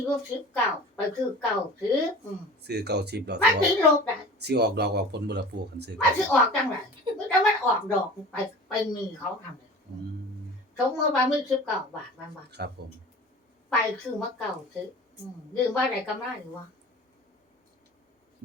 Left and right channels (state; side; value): normal; both; correlation 0.39